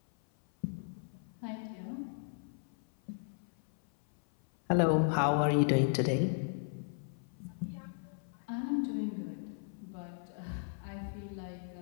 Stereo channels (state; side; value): silent; right; 54 dB below the other